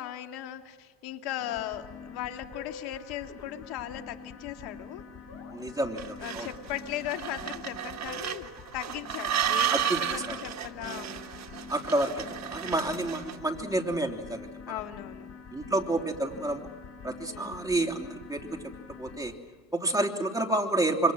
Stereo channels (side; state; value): both; normal; correlation 0.42